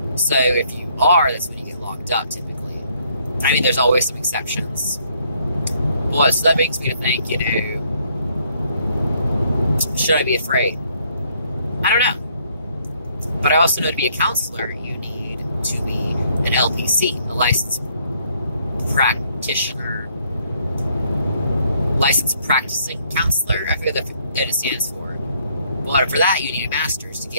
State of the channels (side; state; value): both; inverted; correlation -0.67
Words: So if you are, that's when you get locked up, typically. I mean, there's always some exceptions. But, so that makes me to think, you know, should I be afraid? I don't know. But I also know to be a counselor, you need to be an LPC, a licensed practitioner, licensed practicing counselor. I forget that it stands for. But for that, you need a master's to